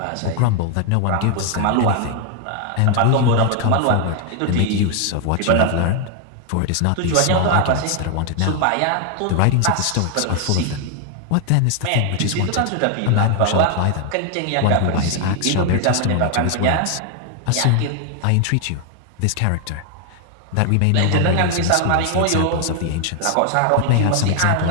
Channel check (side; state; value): both; different; correlation 0.00